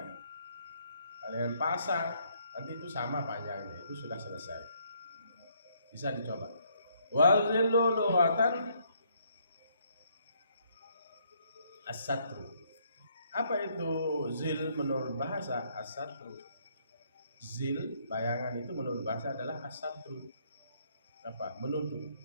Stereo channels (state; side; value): inverted; both; correlation -0.69